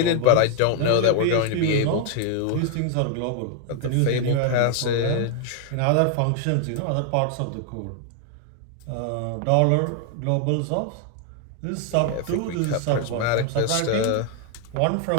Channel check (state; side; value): different; both; correlation 0.00